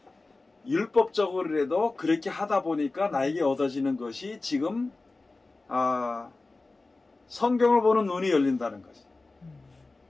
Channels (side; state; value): right; quieter; 3.4 dB